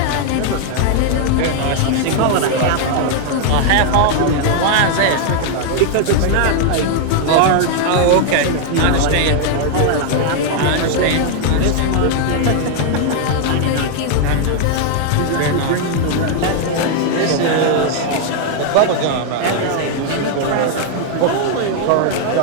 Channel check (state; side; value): different; both; correlation 0.00